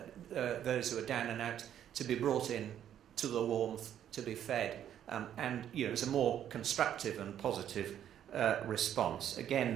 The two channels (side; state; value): left; quieter; 10.3 dB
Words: those who are down and out to be brought in to the warmth, to be fed. And it was a more constructive and positive response,